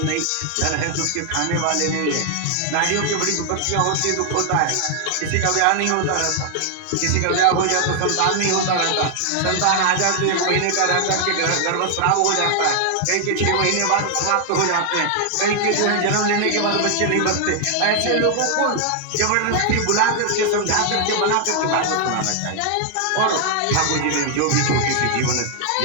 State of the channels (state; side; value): different; both; correlation 0.00